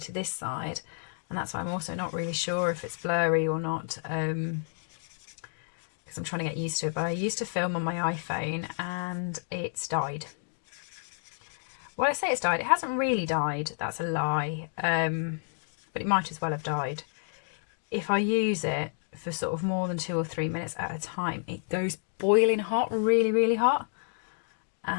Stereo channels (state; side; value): silent; right; digital silence